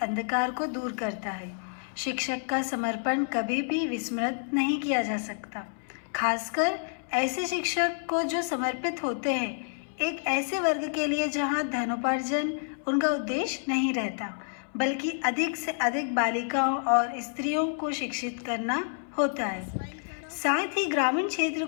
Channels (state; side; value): silent; right; 58 dB below the other